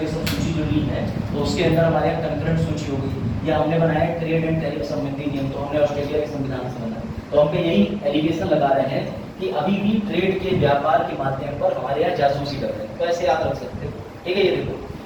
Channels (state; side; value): identical; both; correlation 1.00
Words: ये सब सूची जो ली है, तो उसके अंदर हमारे यहाँ कंकरेंट सूची हो गई, या हमने बनाया ट्रेड एंड टैरिफ संबंधी नियम, तो हमने ऑस्ट्रेलिया के संविधान से बनाया। तो हम पे यही एलिगेशन लगा रहे हैं कि अभी भी ट्रेड के व्यापार के माध्यम पर हमारे यहाँ जासूसी कर रहे हैं। तो ऐसे याद रख सकते हो, ठीक है। ये